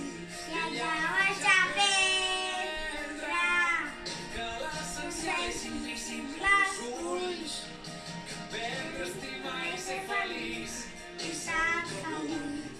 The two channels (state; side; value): identical; both; correlation 1.00